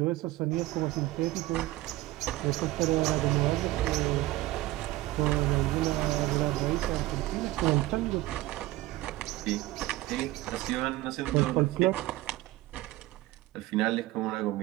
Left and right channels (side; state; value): left; quieter; 17.4 dB